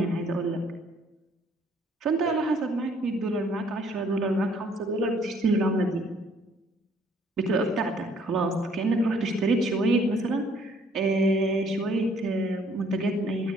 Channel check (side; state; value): both; normal; correlation 0.62